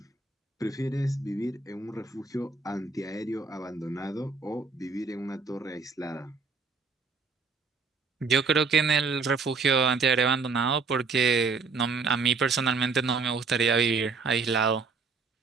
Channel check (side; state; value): left; quieter; 4.5 dB